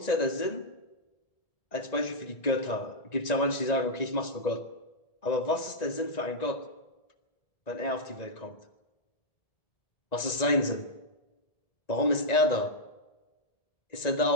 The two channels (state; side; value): late; right; 1.9 ms